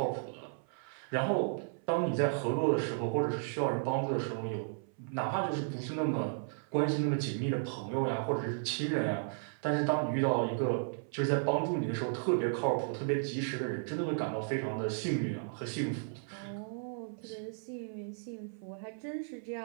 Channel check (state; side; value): silent; left; 55 dB below the other